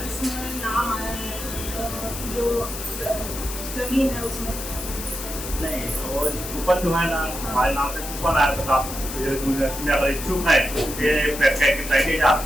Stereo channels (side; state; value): left; noise; hiss, 8 dB below the sound